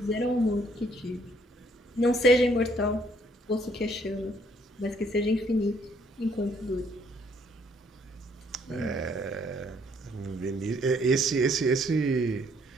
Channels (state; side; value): normal; both; correlation 0.66